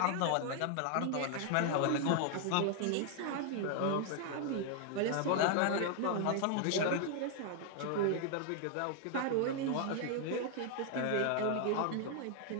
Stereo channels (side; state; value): both; different; correlation 0.00